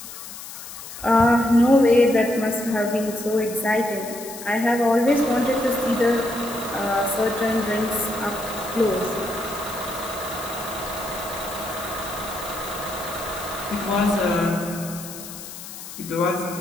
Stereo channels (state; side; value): noise; left; hiss, 12 dB below the sound